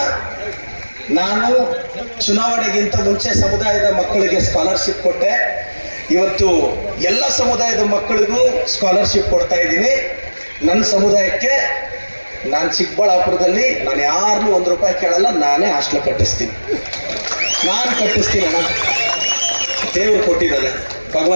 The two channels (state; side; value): inverted; both; correlation -1.00